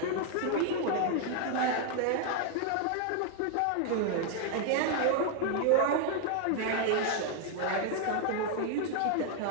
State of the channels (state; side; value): different; both; correlation 0.00